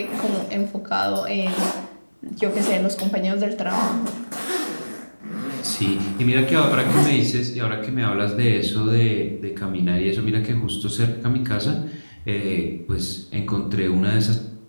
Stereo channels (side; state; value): both; inverted; correlation -1.00